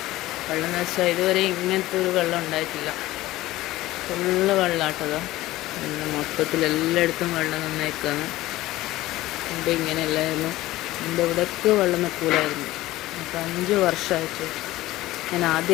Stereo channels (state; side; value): quieter; right; 16.9 dB